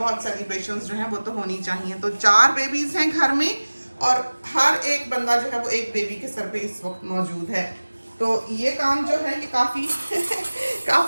सेलिब्रेशंस जो हैं वो तो होनी चाहिए। तो 4 बेबीज़ हैं घर में और हर एक बंदा जो है वो एक बेबी के सर पे इस वक्त मौजूद है। तो ये काम जो है ये काफ़ी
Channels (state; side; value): inverted; both; correlation -1.00